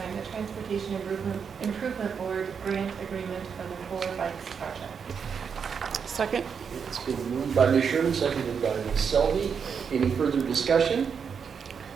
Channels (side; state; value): left; quieter; 6.5 dB